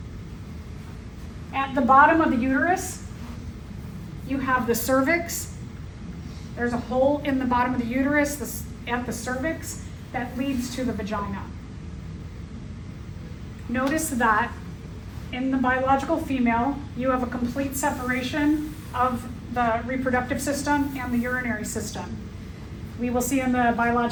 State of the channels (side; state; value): both; identical; correlation 1.00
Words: At the bottom of the uterus, you have the cervix. There's a hole in the bottom of the uterus at the cervix that leads to the vagina. Notice that in the biological female, you have a complete separation of the reproductive system and the urinary system. We will see in the